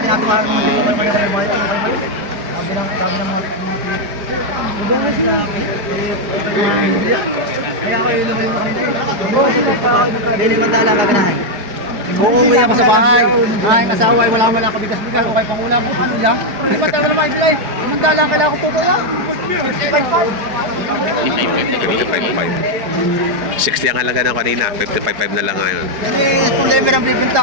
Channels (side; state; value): left; late; 4.8 ms